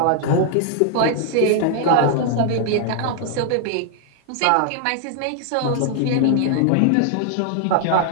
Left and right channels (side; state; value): both; different; correlation 0.00